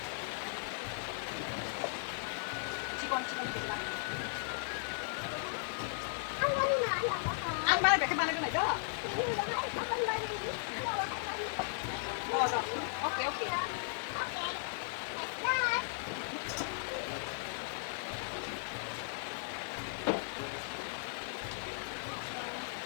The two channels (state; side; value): silent; right; digital silence